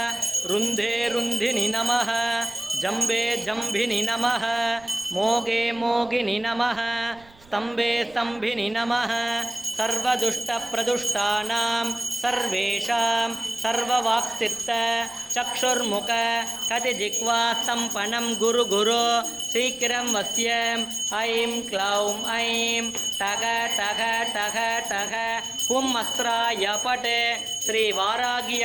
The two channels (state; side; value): noise; right; rumble, 26 dB below the sound